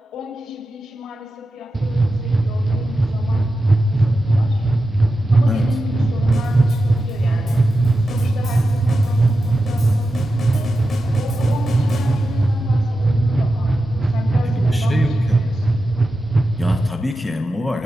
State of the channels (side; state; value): both; normal; correlation 0.91